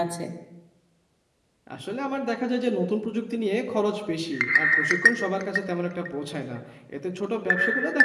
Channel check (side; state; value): both; identical; correlation 1.00